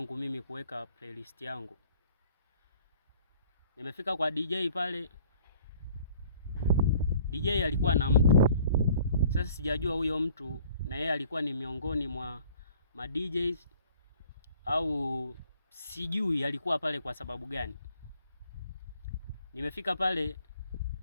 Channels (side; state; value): both; inverted; correlation -0.55